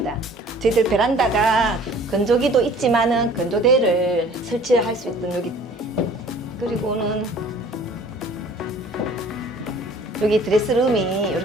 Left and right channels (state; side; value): normal; both; correlation 0.50